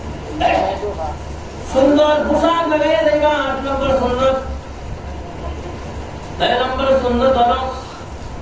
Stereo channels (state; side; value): identical; both; correlation 1.00